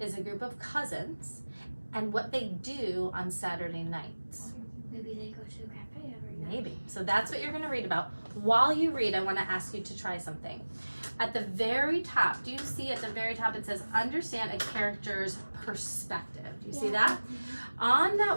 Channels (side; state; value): both; inverted; correlation -1.00